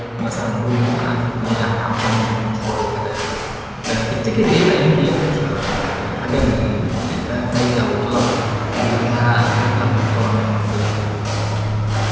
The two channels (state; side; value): identical; both; correlation 1.00